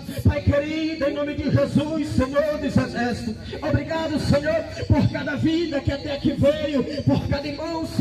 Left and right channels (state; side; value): identical; both; correlation 1.00